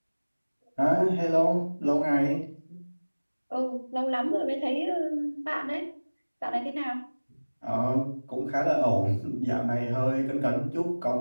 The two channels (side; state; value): both; inverted; correlation -1.00